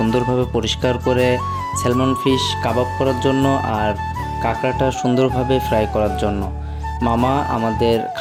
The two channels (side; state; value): both; identical; correlation 1.00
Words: পরিষ্কার করে স্যালমন ফিশ কাবাব করার জন্য আর কাঁকড়াটা সুন্দরভাবে ফ্রাই করার জন্য। মামা আমাদের